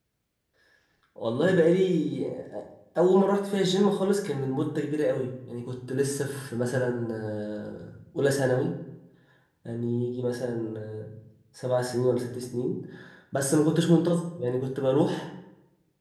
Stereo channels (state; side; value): identical; both; correlation 1.00